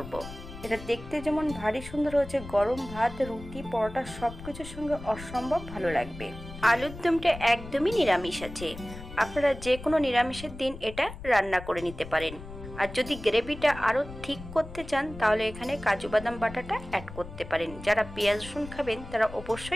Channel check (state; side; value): noise; left; rumble, 13 dB below the sound